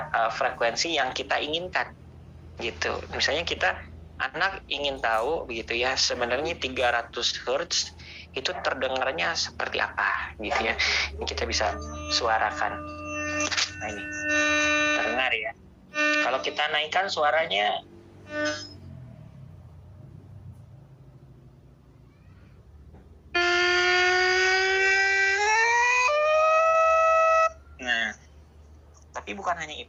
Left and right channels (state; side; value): identical; both; correlation 1.00